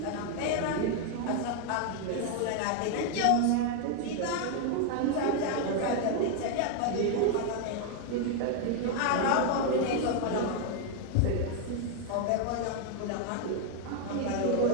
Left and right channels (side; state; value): both; different; correlation 0.00